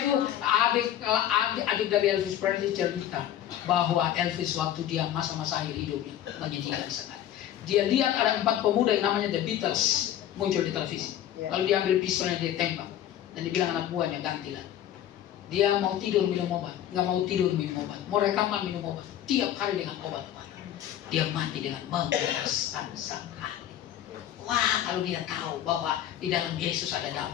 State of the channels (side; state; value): right; quieter; 11.5 dB